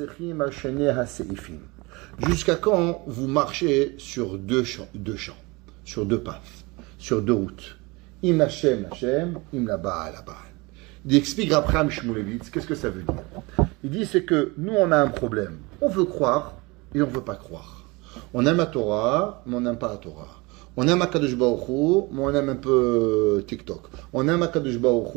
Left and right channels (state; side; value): quieter; left; 25.1 dB